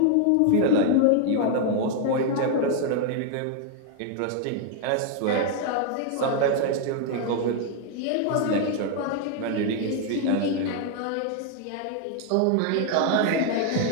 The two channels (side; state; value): both; different; correlation 0.00